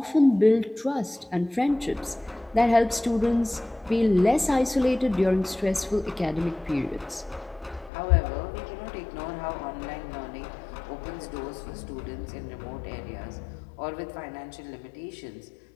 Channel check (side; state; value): right; drops out; at 7.9 s